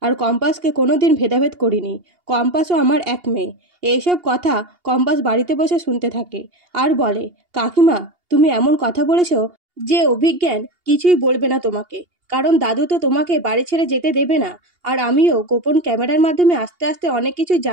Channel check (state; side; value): late; left; 2.8 ms